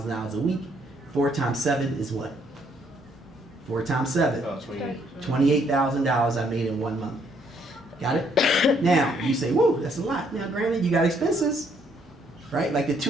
a week, 4 times 7 is what? 4 times 7. $28,000 I made in 1 month. Got it? Now, you say, whoa, that's a lot. Now, granted, you got expenses, right? Like the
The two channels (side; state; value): both; normal; correlation 0.69